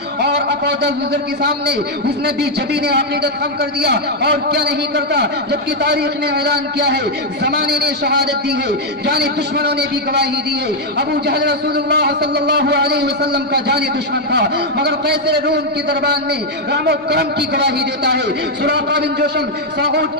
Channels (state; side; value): normal; both; correlation -0.01